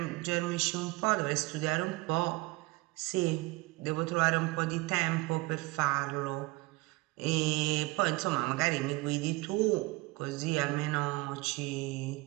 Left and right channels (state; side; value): quieter; left; 22.9 dB